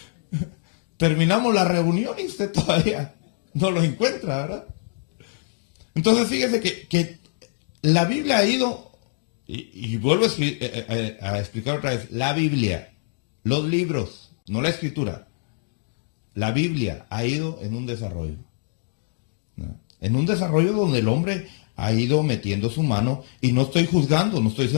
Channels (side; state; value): right; silent; digital silence